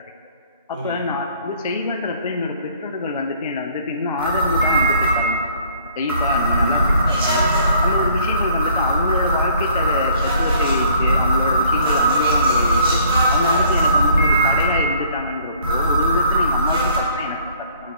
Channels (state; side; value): inverted; both; correlation -0.58